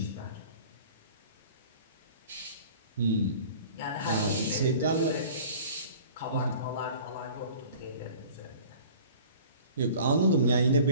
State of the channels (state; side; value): inverted; both; correlation -0.45